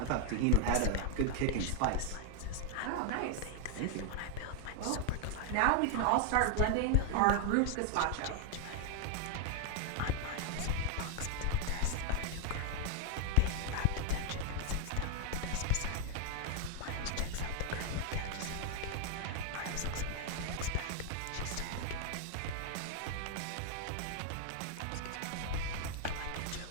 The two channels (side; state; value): both; different; correlation 0.00